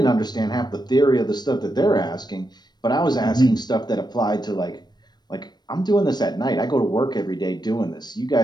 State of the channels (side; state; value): right; late; 0.20 ms